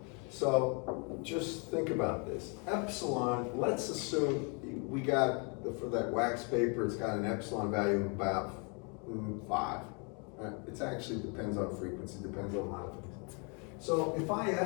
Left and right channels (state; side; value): quieter; right; 35.1 dB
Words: So just think about this. Epsilon, let's assume we got, for that wax paper, it's got an epsilon value of about 5. Right? It actually depends on frequency, depends on a lot of things. So if I